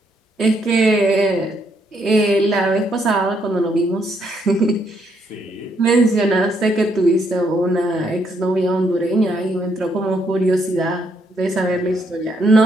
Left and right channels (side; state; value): both; normal; correlation 0.74